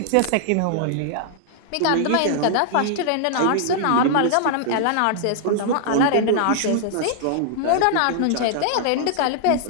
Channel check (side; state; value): both; different; correlation -0.01